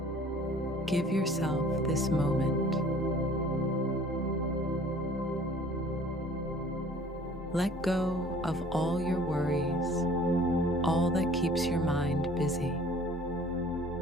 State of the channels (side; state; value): both; normal; correlation 0.52